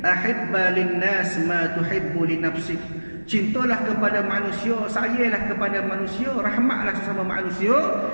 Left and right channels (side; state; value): both; inverted; correlation -1.00